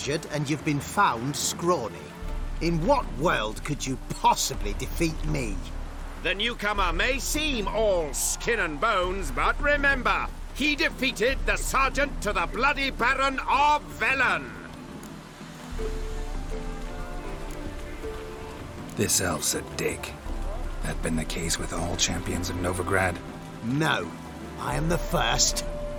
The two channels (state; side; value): identical; both; correlation 1.00